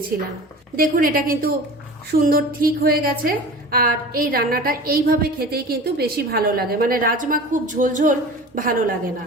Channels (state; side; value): normal; both; correlation 0.37